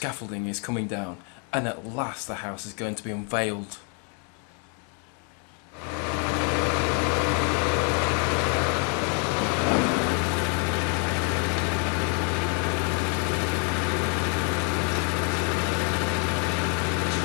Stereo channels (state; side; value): quieter; right; 38.8 dB